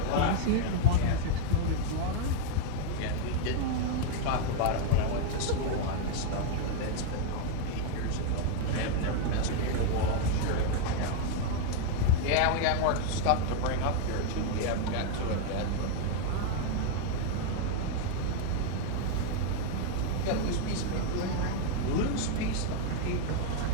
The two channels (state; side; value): different; both; correlation 0.00